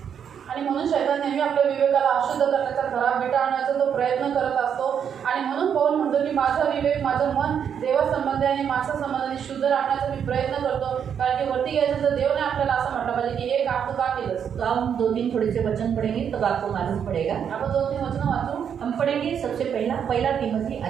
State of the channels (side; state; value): left; quieter; 8.0 dB